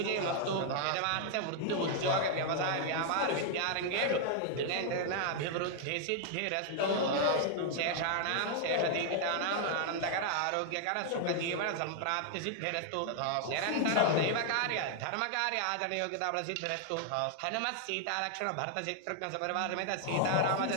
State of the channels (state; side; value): different; both; correlation 0.00